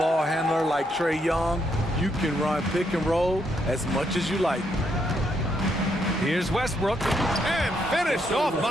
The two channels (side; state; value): both; normal; correlation 0.76